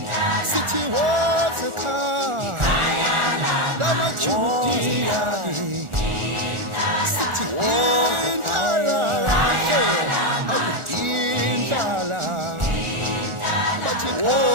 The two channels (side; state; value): left; late; 1.4 ms